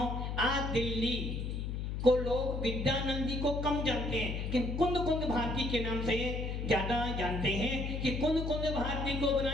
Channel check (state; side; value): noise; left; hum, 3 dB below the sound